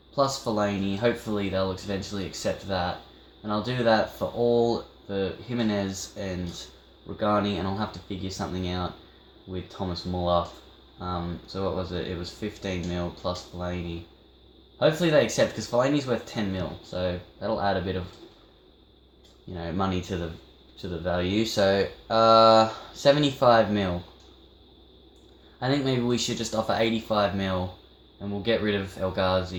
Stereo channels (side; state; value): both; identical; correlation 1.00